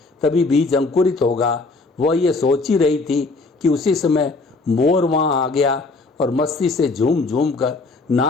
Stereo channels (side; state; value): right; quieter; 3.6 dB